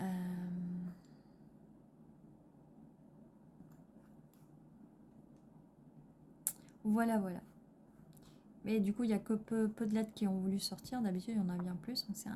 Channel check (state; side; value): identical; both; correlation 1.00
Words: Voilà, voilà. Mais du coup, il n'y a que peu de lettres qui ont voulu sortir. D'habitude, il y en a bien plus. Donc c'est